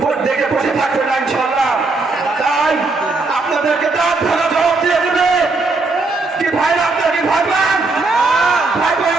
ভোট দেখে বসে থাকবে না ইনশাআল্লাহ। তাই আপনাদেরকে তার ধারা জবাব দিয়ে দেবে কি ভাইরা, আপনারা কি ভয় পান? ভয়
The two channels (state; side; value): quieter; left; 3.6 dB